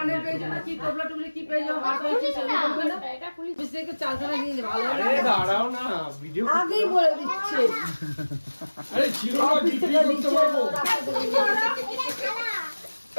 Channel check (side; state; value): both; inverted; correlation -1.00